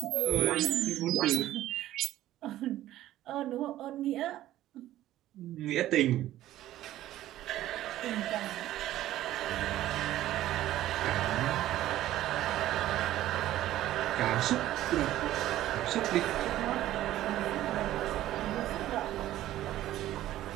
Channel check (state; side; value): quieter; left; 14.0 dB